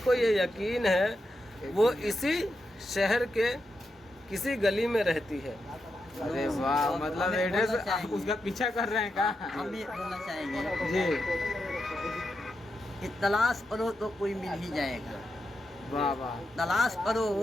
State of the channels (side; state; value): both; normal; correlation 0.86